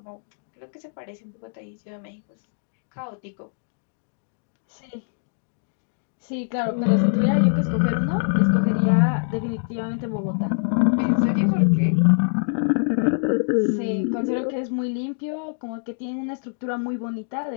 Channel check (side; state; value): right; silent; digital silence